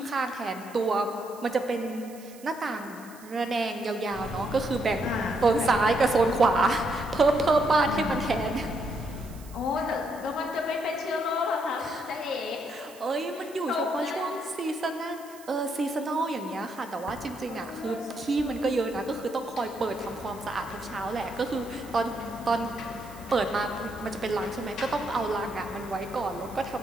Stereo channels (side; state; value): right; noise; hiss, 21 dB below the sound